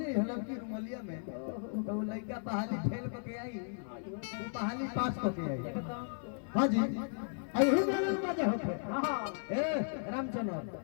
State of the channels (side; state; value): right; silent; 54 dB below the other